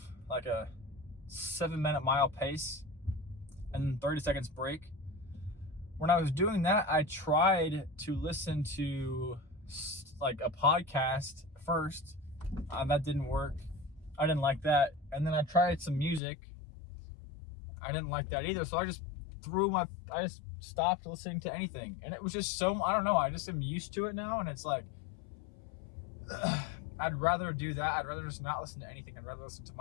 like a 7-minute mile pace and 30 seconds break. When I was doing that, I tried to listen to like a podcast first. That didn't work. I didn't like that. And then I tried some music. I didn't like that either. So I just stopped listening to anything. And it was just I don't know. I just am used to it now. And it's like, I'd rather do that. I'd rather just not listen to anything. I'd rather listen to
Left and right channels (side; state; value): right; drops out; at 16.2 s